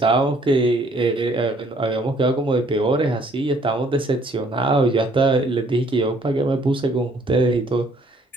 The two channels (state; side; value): normal; both; correlation 0.62